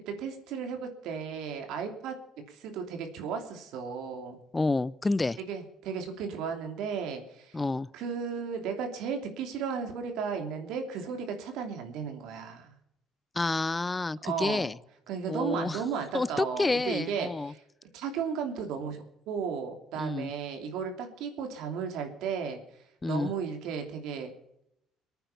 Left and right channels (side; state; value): both; normal; correlation 0.64